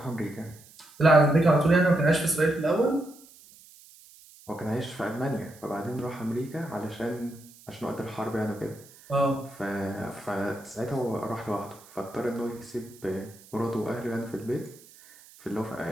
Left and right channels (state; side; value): noise; right; hiss, 23 dB below the sound